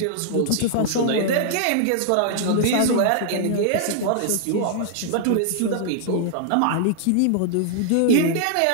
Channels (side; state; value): both; different; correlation -0.01